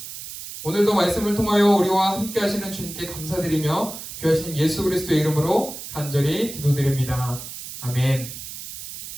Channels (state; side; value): noise; right; hiss, 11 dB below the sound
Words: 오늘도 말씀을 통하여 우리와 함께 하시는 주님께 감사드리며 귀하신 예수 그리스도의 이름으로 간절히 기도드립니다. 아멘.